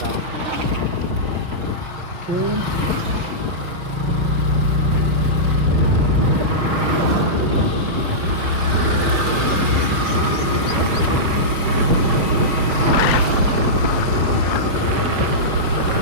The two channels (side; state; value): left; late; 5.6 ms